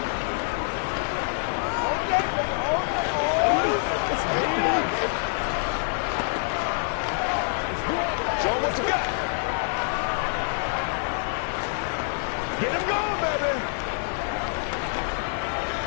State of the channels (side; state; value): right; silent; 61 dB below the other